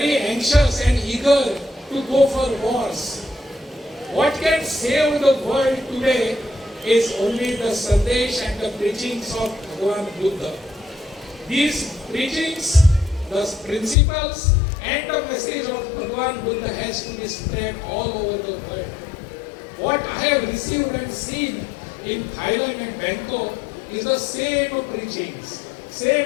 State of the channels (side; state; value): right; drops out; at 14.0 s